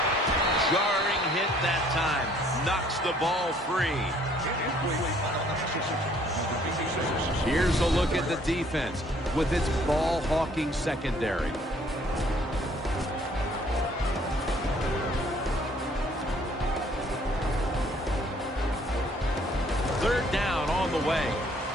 Jarring hit that time. Knocks the ball free. Here's a look at the defense with its ball-hawking secondary. Third down on the way.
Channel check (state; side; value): normal; both; correlation 0.61